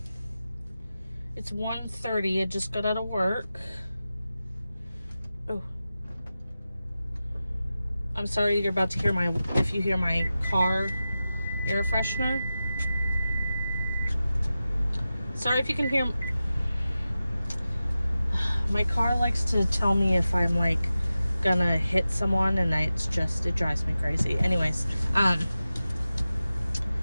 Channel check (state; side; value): inverted; both; correlation -0.94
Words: it's 1:30. I just got out of work. Oh, I'm sorry you're about to hear if you hear my car air freshener. Sorry if you can hear. My car likes to tell me if I'm like gonna hit someone, and it drives me crazy. Anyways,